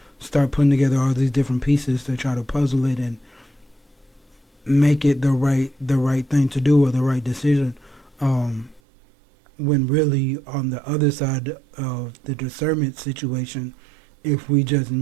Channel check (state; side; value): drops out; left; at 8.8 s